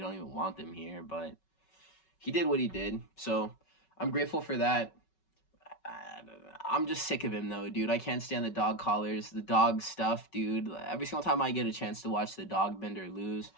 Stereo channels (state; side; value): late; right; 5.3 ms